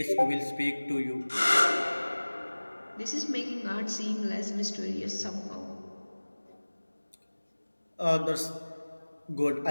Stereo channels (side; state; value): both; inverted; correlation -1.00